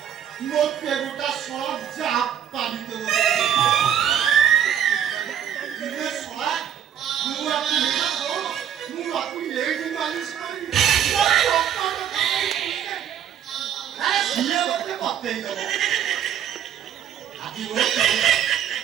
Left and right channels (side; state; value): left; quieter; 9.6 dB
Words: Mau peruta soal japa itu. Ini soal mulaku lihat lo. Mulaku ini manis sekali. Dia betul betul itu. Hati lo.